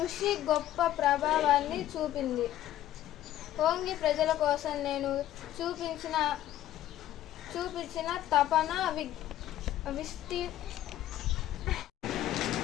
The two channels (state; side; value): quieter; right; 13.0 dB